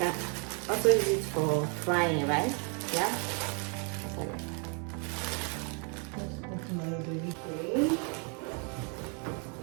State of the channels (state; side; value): quieter; left; 37.6 dB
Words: also use it for frying, right? Yeah. Okay.